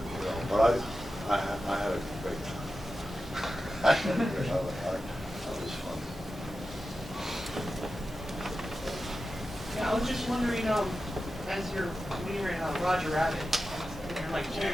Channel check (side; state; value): both; normal; correlation 0.92